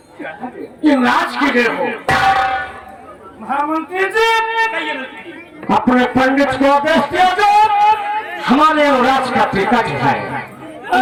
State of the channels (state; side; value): identical; both; correlation 1.00